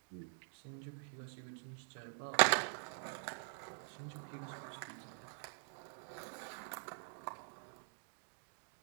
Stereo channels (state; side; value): silent; left; digital silence